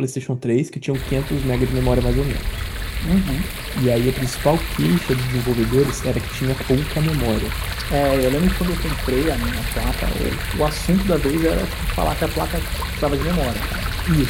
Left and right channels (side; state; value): both; identical; correlation 1.00